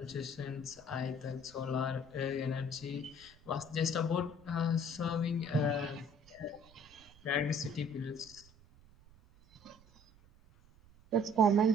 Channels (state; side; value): noise; right; rumble, 26 dB below the sound